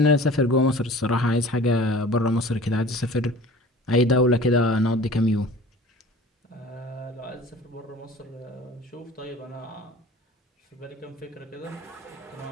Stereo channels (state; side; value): normal; both; correlation 0.43